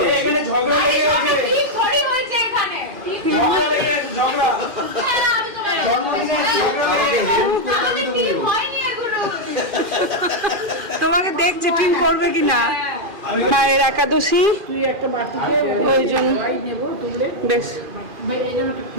এখানে ঝগড়া লেগে গেছে ঠিক থরি হয়েছে এখানে ঠিক ঝগড়া লেগে গেছে ঝগড়া আমি তোমার আমাকে হেল্প আমাদের ঠিক হয়নি এগুলো তোমাকে দেখছে টিম করবে কিনা মায়ের একাদশী তুই একটা বাটিতে ওই জন্য নেব তুলে বেশ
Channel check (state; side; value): late; left; 2.4 ms